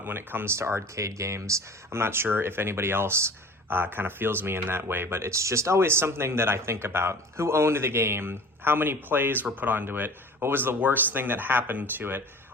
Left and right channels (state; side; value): normal; both; correlation 0.40